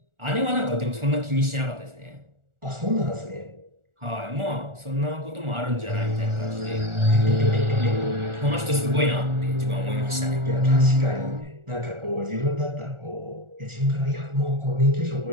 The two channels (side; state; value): left; late; 1.4 ms